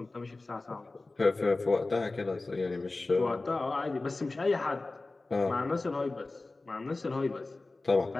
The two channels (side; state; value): right; quieter; 3.3 dB